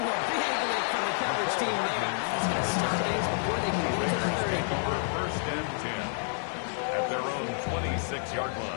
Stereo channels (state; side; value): silent; right; 58 dB below the other